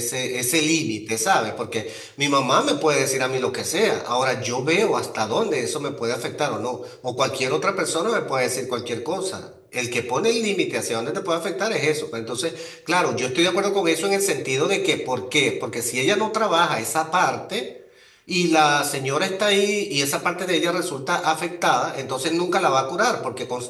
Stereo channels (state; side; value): identical; both; correlation 1.00